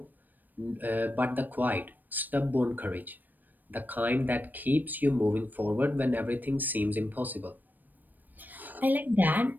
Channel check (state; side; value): late; left; 0.088 ms